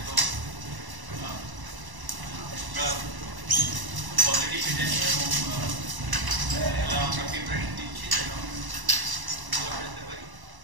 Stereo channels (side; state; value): left; late; 1.0 ms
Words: তো আমরা অলরেডি ফিট আছি এবং আমরা প্রিপারেশন দিচ্ছি যেন ভালো খেলতে পারি।